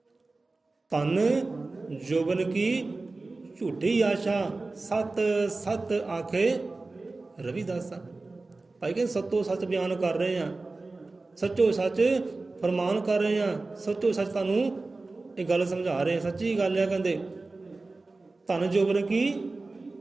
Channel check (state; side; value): quieter; left; 3.4 dB